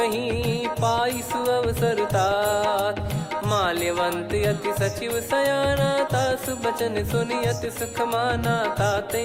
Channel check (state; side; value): identical; both; correlation 1.00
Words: पाई सुअवसर तात। माल्यवंत अति सचिव सयाना तासु बचन सुनि अति सुख माना।